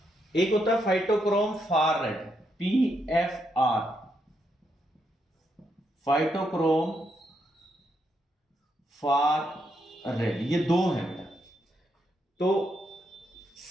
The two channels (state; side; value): normal; both; correlation 0.79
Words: एक होता है phytochrome far red, PFR, phytochrome far red, ये दो हैं बेटा। तो